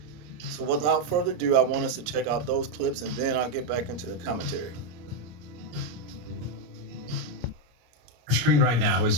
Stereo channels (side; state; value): left; late; 34 ms